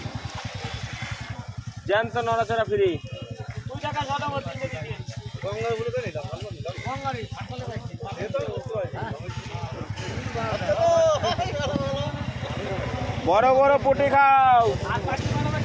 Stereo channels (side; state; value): both; identical; correlation 1.00